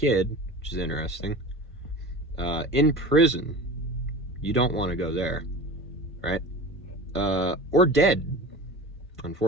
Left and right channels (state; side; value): normal; both; correlation 0.34